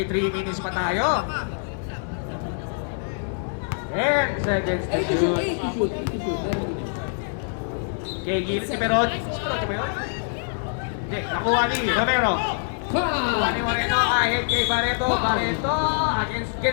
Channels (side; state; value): right; silent; digital silence